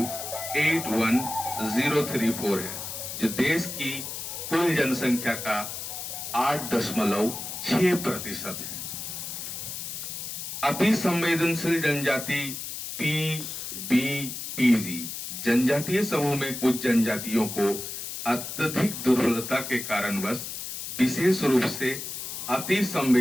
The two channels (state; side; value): noise; left; hiss, 7 dB below the sound